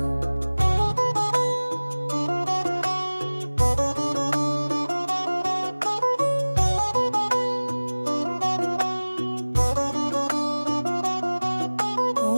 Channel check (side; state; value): both; inverted; correlation -1.00